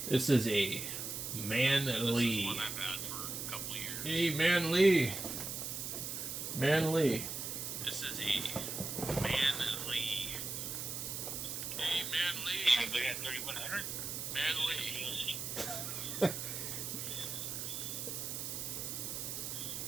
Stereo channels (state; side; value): noise; right; hiss, 4 dB below the sound